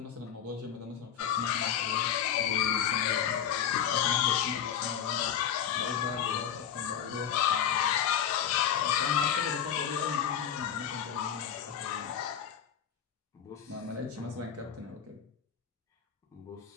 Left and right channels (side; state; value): right; quieter; 9.0 dB